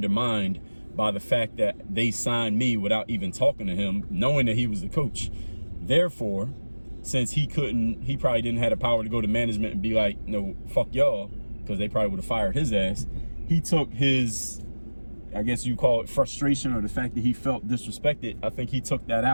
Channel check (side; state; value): both; inverted; correlation -1.00